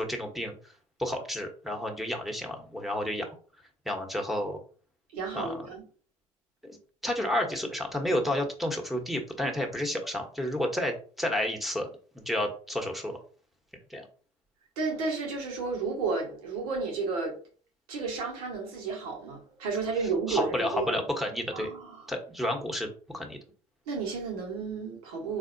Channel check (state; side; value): normal; both; correlation 0.58